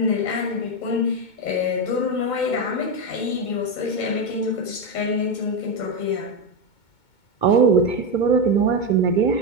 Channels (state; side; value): late; right; 2.2 ms